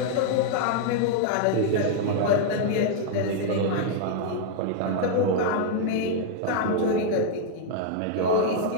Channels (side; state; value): both; different; correlation -0.01